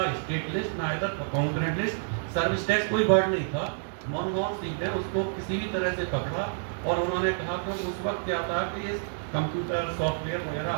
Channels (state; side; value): silent; left; digital silence